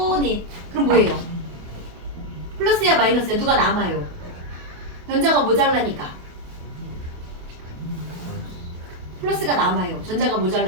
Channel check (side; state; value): left; late; 28 ms